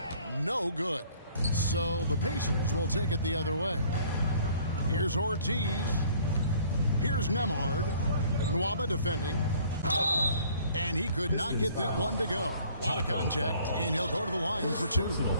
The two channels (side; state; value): both; inverted; correlation -0.56